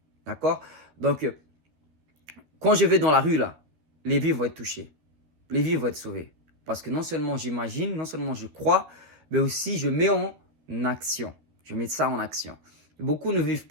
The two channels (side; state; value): left; late; 13 ms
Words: D'accord? Donc, quand je vais dans la rue, là, les vies vont être touchées. Les vies vont être sauvées. Parce que non seulement j'imagine, non seulement je crois, mais aussi je mets en action. Je mets ça en action. Beaucoup ne vivent